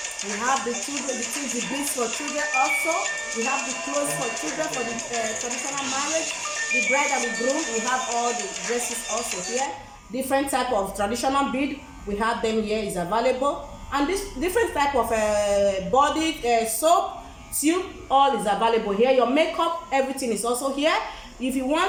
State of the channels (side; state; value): both; identical; correlation 1.00